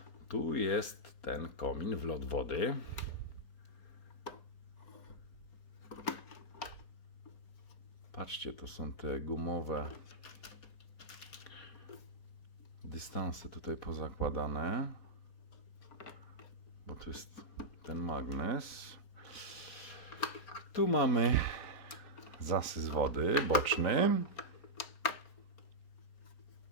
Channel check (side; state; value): right; late; 4.3 ms